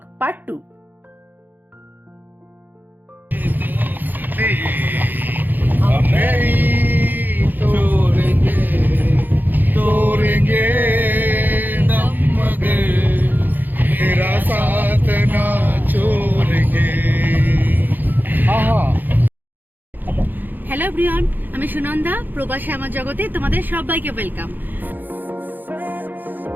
পার্ট 2। हम नहीं तोड़ेंगे तोड़ेंगे दम मगर तेरा साथ ना छोड़ेंगे। হ্যালো এভরিওয়ান, আমি সুনন্দা, প্রবাসে আমার জগতে তোমাদের সবাইকে ওয়েলকাম।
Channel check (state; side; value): late; left; 0.087 ms